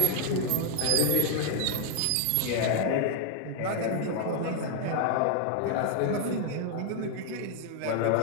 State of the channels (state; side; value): different; both; correlation 0.00